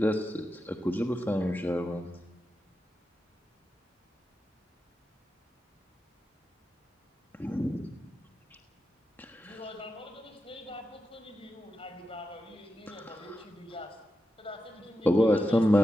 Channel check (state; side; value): normal; both; correlation 0.89